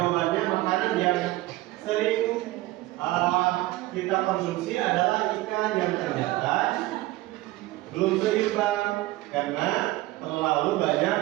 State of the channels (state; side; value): quieter; left; 18.2 dB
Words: makanan yang sering kita konsumsi adalah ikan, yang ternyata belum seimbang karena terlalu